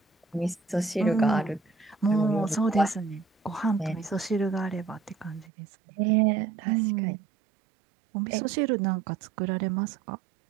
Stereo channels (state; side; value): drops out; left; at 5.5 s